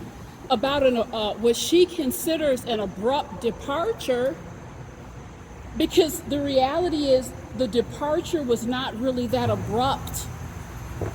about what she considers an abrupt departure, because the reality is the departure was not really that abrupt.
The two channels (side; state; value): both; identical; correlation 1.00